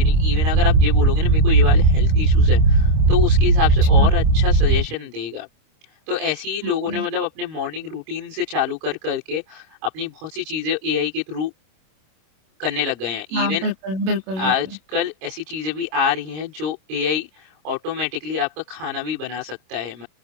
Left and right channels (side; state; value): left; late; 27 ms